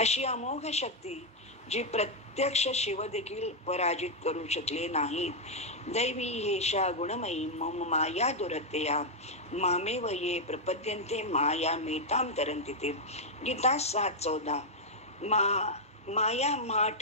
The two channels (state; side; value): normal; both; correlation -0.02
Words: अमोघ शक्ती जी प्रत्यक्ष शिव देखील पराजित करू शकले नाहीत. दैवी हेशा गुणमयी मम माया दुरत्या मामेव ये प्रपद्यन्ते माया मेताम तरन्ति ते. गीता 7:14. माया मा